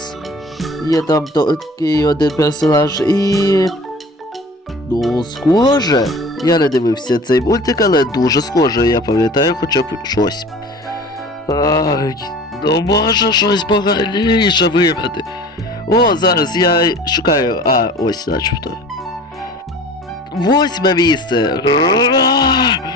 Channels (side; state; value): both; normal; correlation 0.42